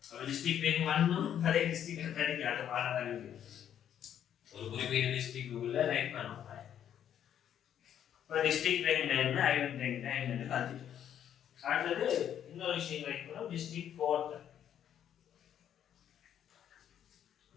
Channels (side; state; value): right; quieter; 9.8 dB